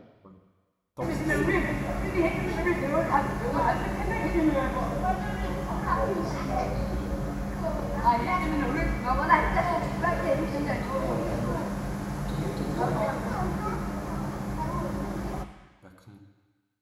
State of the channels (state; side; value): identical; both; correlation 1.00